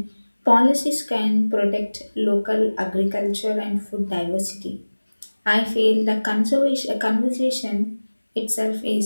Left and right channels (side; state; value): both; inverted; correlation -1.00